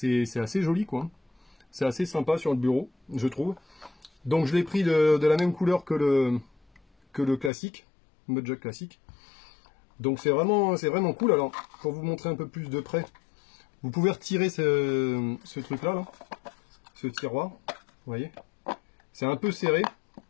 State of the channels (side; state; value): right; drops out; at 7.5 s